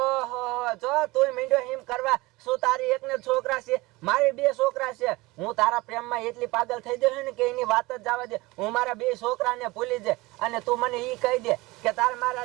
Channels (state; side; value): quieter; left; 21.7 dB